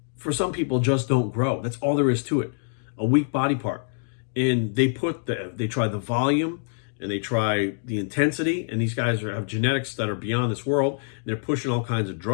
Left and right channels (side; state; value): right; silent; digital silence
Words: for some people just don't grow. That's all there is to it. A weak body part. And they try the volume, and they try the intensity, and these guys have genetics that are beyond this world. They're pushing all kinds of